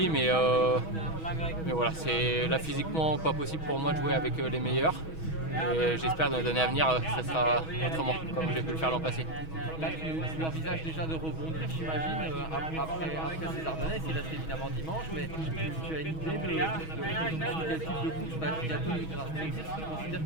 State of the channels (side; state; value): right; late; 6.2 ms